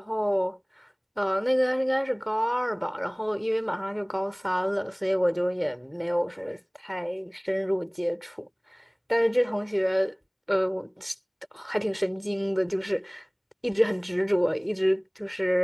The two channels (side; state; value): both; identical; correlation 1.00